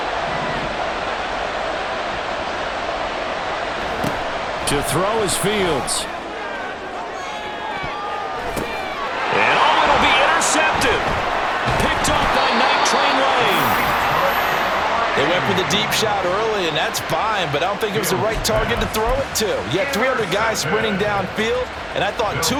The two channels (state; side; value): identical; both; correlation 1.00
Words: To throw is Fields. And oh, it'll be intercepted. Picked off by Night Train Lane. They went for the deep shot early, and that's fine, but I don't think it was the right target to throw it to. You had 300 guys sprinting downfield, and I thought 2